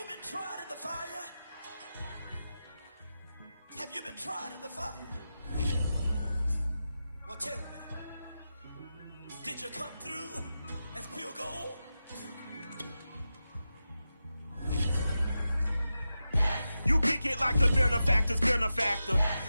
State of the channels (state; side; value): inverted; both; correlation -0.92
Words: been tried in the fire? Have you been tried in the fire? Well, tell me, did you come through as pure gold? You kick it like the benefactor's benefactor.